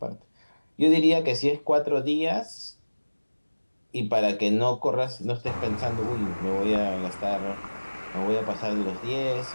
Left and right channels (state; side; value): inverted; both; correlation -1.00